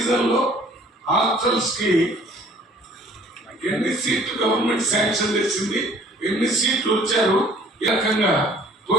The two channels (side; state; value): both; normal; correlation 0.55